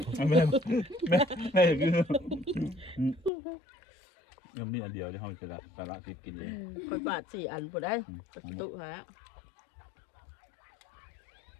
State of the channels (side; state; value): right; drops out; at 3.3 s